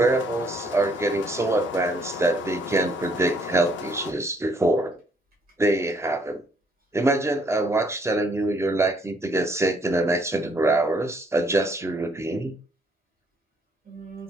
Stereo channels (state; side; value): normal; both; correlation 0.66